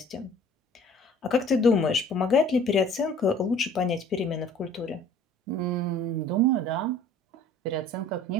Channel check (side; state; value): both; normal; correlation 0.51